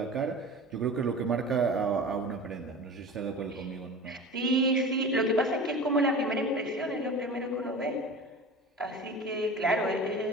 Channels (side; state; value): both; normal; correlation 0.35